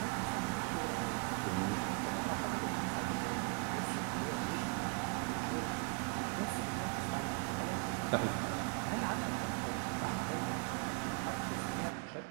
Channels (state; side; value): quieter; left; 36.2 dB